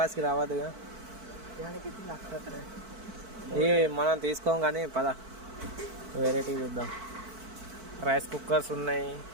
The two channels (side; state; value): left; late; 4.5 ms